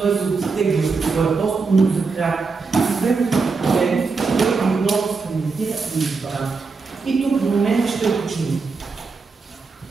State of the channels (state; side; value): quieter; left; 4.5 dB